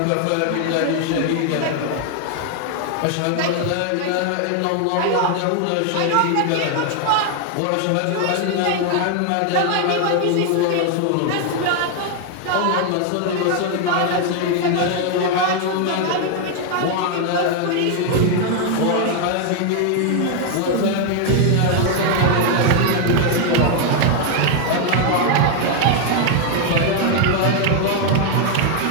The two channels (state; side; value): different; both; correlation 0.00